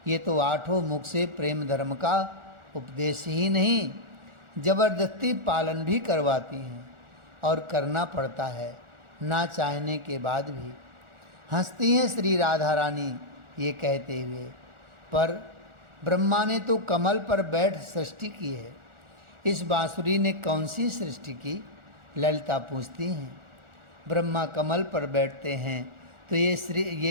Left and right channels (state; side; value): late; left; 1.4 ms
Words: ये तो 8 मुख से प्रेम धर्म का उपदेश ही नहीं, जबरदस्ती पालन भी करवाती हैं और करना पड़ता है ना चाहने के बाद भी। हंसती हैं श्री राधा रानी ये कहते हुए। पर ब्रह्मा ने तो कमल पर बैठ सृष्टि की है, इस बांसुरी ने कौन सी सृष्टि की? ललिता पूछती हैं। ब्रह्मा कमल पर बैठते हैं तो